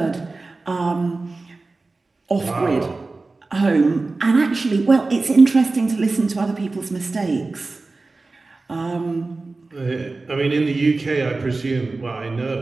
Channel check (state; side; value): quieter; left; 3.5 dB